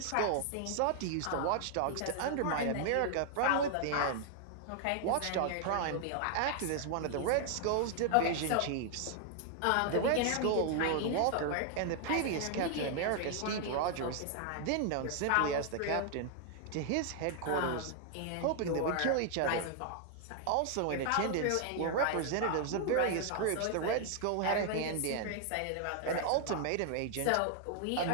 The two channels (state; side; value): different; both; correlation 0.00